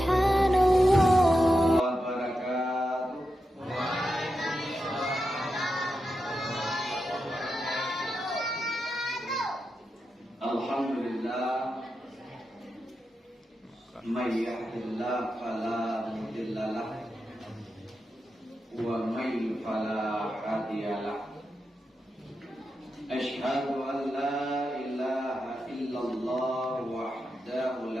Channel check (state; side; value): normal; both; correlation 0.88